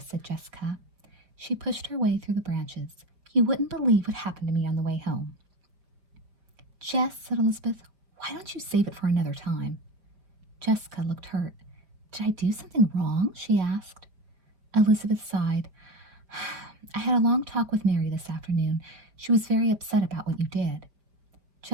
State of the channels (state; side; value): late; left; 5.2 ms